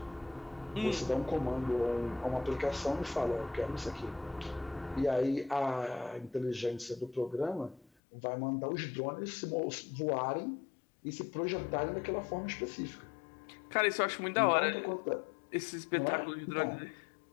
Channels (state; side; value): drops out; right; at 7.9 s